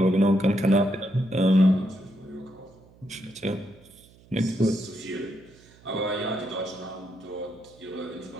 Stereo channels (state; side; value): noise; right; hum, 26 dB below the sound